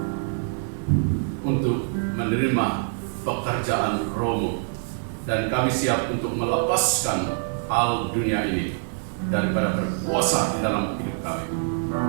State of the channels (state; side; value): silent; left; digital silence